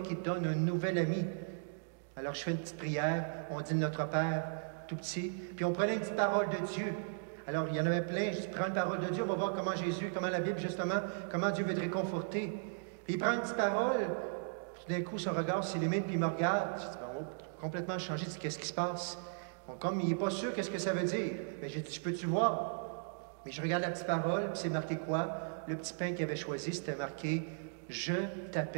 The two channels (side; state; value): left; silent; digital silence